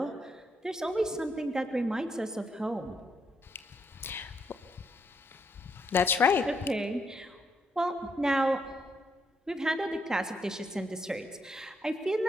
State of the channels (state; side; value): normal; both; correlation 0.76